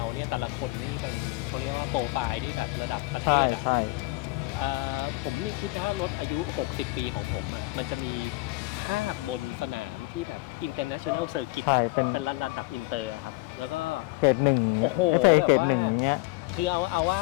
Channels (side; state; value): right; quieter; 22.1 dB